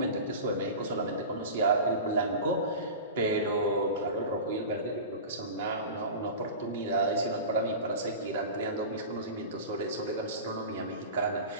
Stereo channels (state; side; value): inverted; both; correlation -0.31